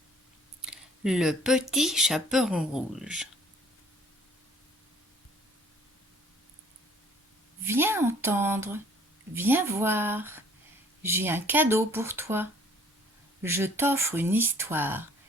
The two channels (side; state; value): both; normal; correlation 0.55